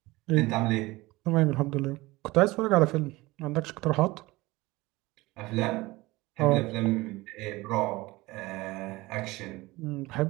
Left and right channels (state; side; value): quieter; left; 20.8 dB